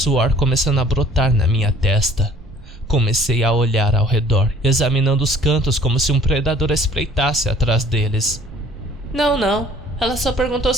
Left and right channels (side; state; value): both; normal; correlation 0.54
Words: começando a brotar na minha testa. Comecei a olhar ao redor, examinando os cantos como se um predador espreitasse atrás deles. Não. Ela só perguntou